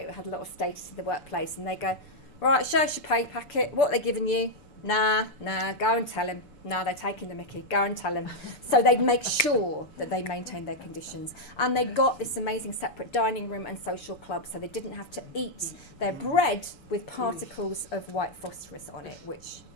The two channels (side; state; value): right; late; 6.8 ms